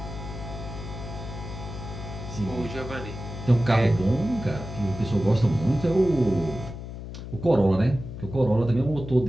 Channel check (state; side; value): noise; left; hum, 10 dB below the sound